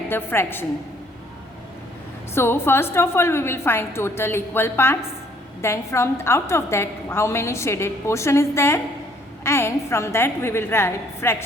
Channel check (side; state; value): both; normal; correlation 0.62